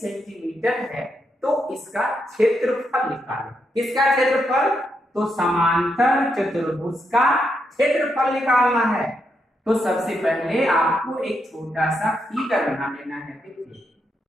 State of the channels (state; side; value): normal; both; correlation 0.81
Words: है, तो इसका क्षेत्रफल निकालें। किसका क्षेत्रफल, तो समांतर चतुर्भुज का क्षेत्रफल निकालना है। तो सबसे पहले आपको एक छोटा सा फिगर बना लेना है। देखिए